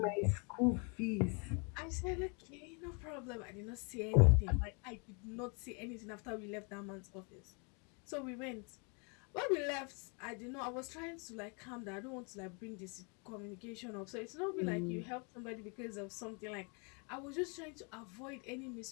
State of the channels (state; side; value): quieter; right; 35.0 dB